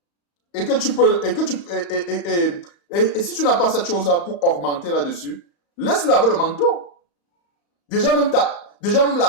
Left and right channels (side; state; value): right; late; 35 ms